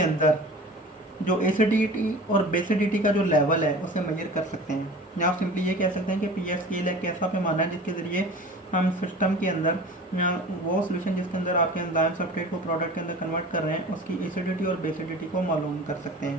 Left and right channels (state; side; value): normal; both; correlation 0.39